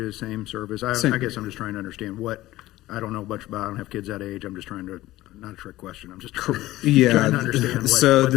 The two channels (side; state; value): right; quieter; 16.5 dB